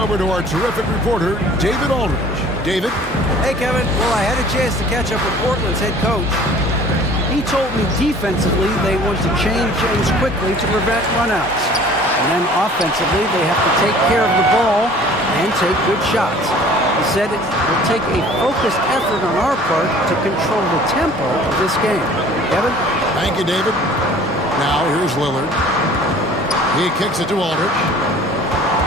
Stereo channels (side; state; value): both; normal; correlation 0.49